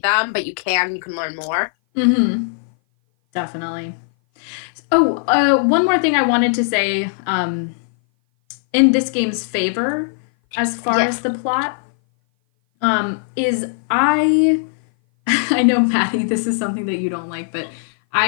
them, but you can learn more. Mm-hmm. Definitely. Oh, one more thing I wanted to say, in this game's favor, as far as the plot, is I know, Maddie, this is something that you don't like, but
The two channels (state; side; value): silent; right; 58 dB below the other